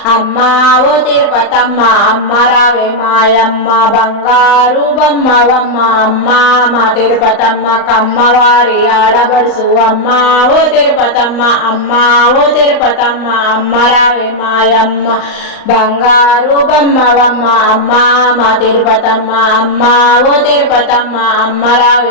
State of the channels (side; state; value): right; late; 39 ms